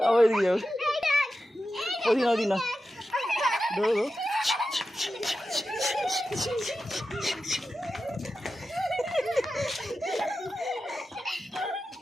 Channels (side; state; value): both; normal; correlation 0.91